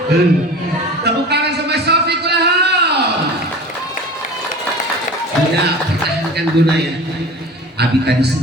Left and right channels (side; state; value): both; normal; correlation 0.38